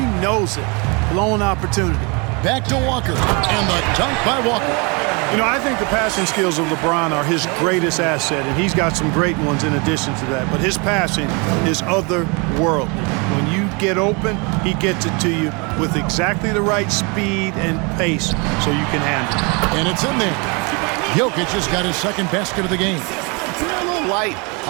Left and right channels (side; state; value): left; quieter; 30.8 dB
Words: knows it. Blown opportunity. Back to Walker, and the dunk by Walker. You know, I think the passing skills of LeBron are his greatest asset, and he's got some great ones in addition to that. But his passing is otherworldly. When you get open, he gets it to you with exactly the right speed and pace so you can handle it. And it's in there. Jokic has got his second basket of the game. A little light